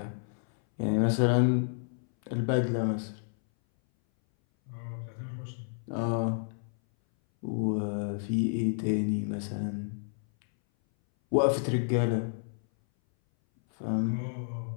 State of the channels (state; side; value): silent; right; 58 dB below the other